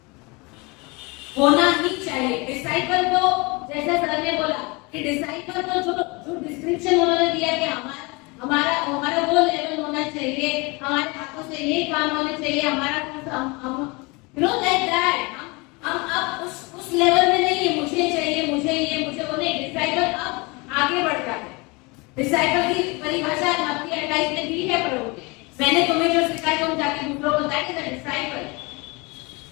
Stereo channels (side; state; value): right; quieter; 26.9 dB